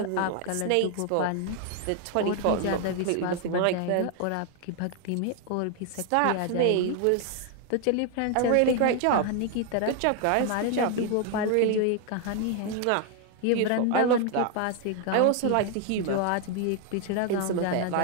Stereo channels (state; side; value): different; both; correlation 0.00